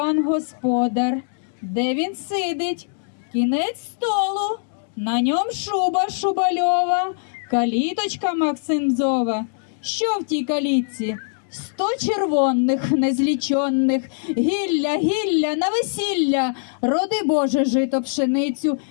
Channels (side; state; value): right; silent; digital silence